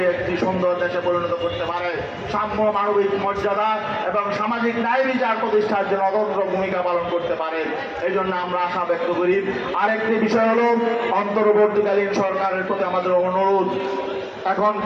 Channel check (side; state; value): both; identical; correlation 1.00